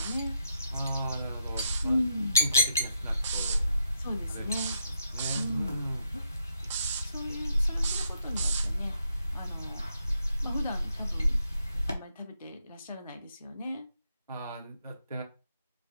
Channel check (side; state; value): both; inverted; correlation -0.78